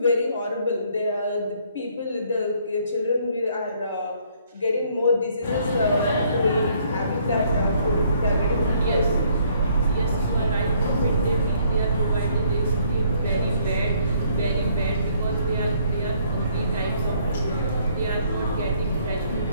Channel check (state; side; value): inverted; both; correlation -0.65